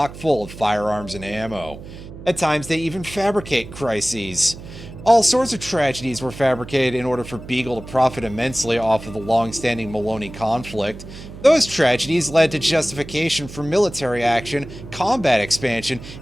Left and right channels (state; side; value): noise; right; hum, 14 dB below the sound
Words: full of firearms and ammo. At times, they even fabricate crises. All sorts of tragedies were fabricated in order for Beagle to profit immensely off of the long-standing Maloney conflict. Those tragedies led to justification for military action, combat expansion,